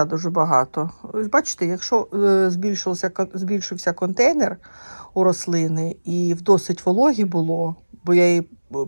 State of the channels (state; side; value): inverted; both; correlation -1.00